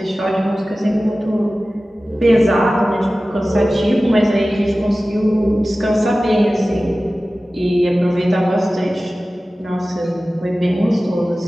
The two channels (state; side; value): normal; both; correlation 0.96